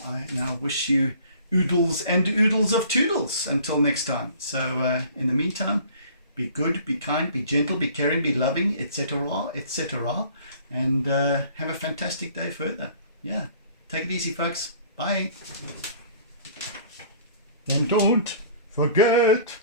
now wish you oodles and oodles of toodles until next time. So in the meantime, be good, be kind, be gentle, be caring, be loving, etc., etc. And have a fantastic day further. Yeah, take it easy, folks. Bye. And don't forget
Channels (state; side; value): inverted; both; correlation -0.51